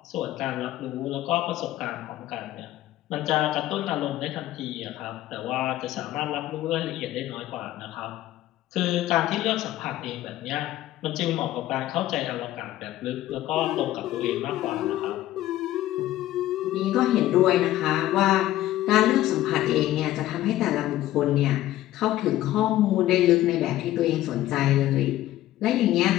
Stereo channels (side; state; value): right; quieter; 14.5 dB